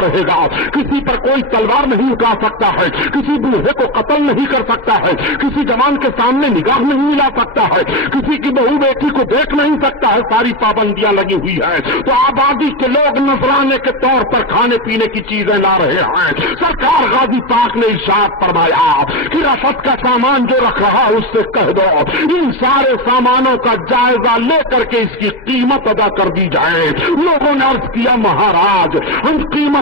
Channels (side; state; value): right; late; 2.0 ms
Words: رہے گا, کسی پر کوئی تلوار نہیں اٹھا سکتا ہے, کسی بوڑھے کو قتل نہیں کر سکتا ہے, کسی جوان کے سامنے نگاہ نہیں ملا سکتا ہے, کسی کی بہو بیٹی کو دیکھ نہیں سکتا ہے, ساری پابندیاں لگی ہوئی ہیں, تو آبادی کے لوگ نذرانے کے طور پر کھانے پینے کی چیزیں لا رہے ہیں. سرکار غازی پاک نے ارشاد فرمایا کہ رفت کا سامان جو رکھ رہا ہے اس سے کہہ دو ان سارے سامانوں کا جائزہ لے کر کے اس کی قیمت ادا کر دی جائے. لوگوں نے عرض کیا مہاراج ہم